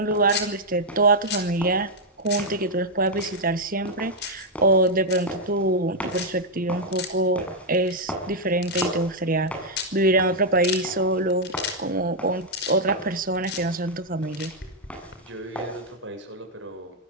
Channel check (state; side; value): normal; both; correlation -0.03